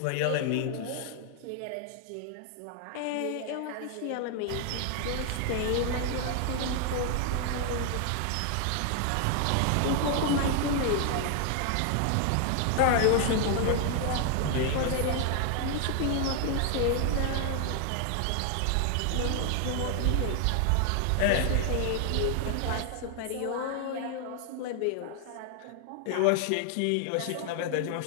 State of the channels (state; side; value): different; both; correlation 0.00